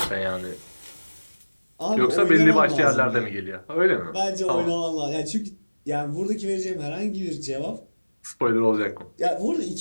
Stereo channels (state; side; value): inverted; both; correlation -1.00